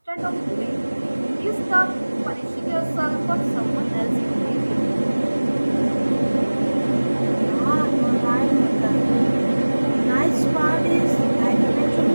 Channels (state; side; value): inverted; both; correlation -1.00